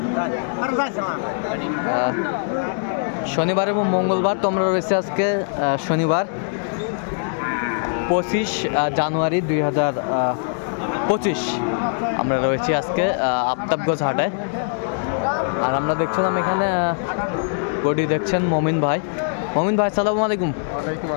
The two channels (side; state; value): right; silent; 64 dB below the other